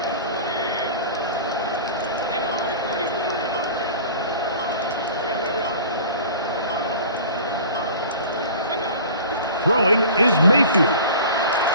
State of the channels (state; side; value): inverted; both; correlation -0.40